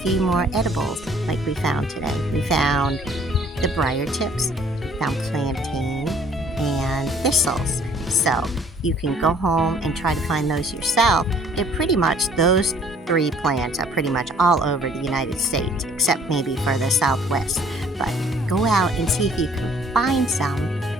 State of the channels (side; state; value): both; normal; correlation 0.58